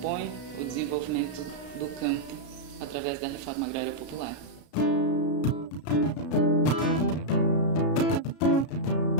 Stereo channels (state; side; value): late; right; 33 ms